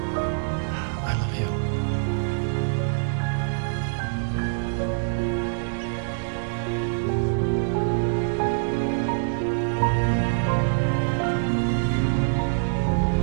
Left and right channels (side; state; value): left; silent; 62 dB below the other